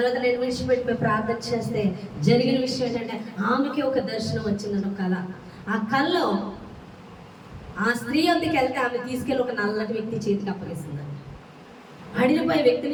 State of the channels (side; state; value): both; identical; correlation 1.00